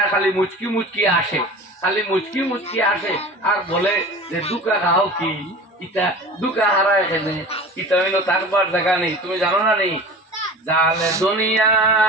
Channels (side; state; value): both; normal; correlation 0.37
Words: খালি মুচকি মুচকি আসে, খালি মুচকি মুচকি আসে আর বলে যে দুকা খাও কি ইটা দুকা হারায় এখানে, ইটা হইলো থাকবার জায়গা নেই। তুমি জানো না নেই জালে দুনিয়া